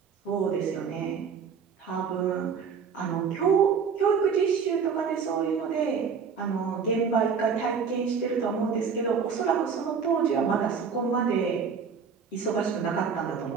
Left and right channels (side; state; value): left; quieter; 6.2 dB